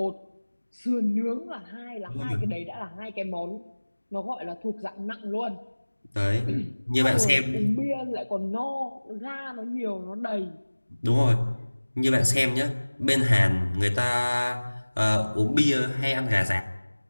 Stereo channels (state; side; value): inverted; both; correlation -1.00